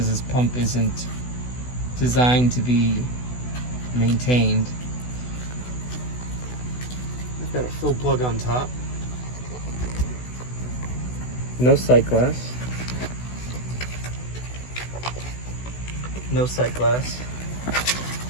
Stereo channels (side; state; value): right; late; 16 ms